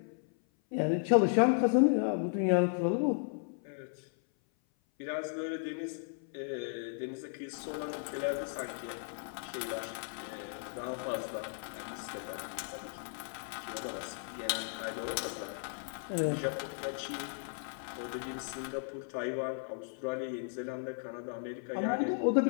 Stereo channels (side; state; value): right; silent; 54 dB below the other